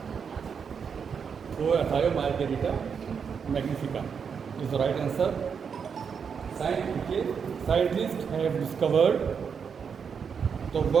वो Thiomargarita magnifica is the right answer. Scientists have discovered the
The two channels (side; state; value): left; quieter; 6.5 dB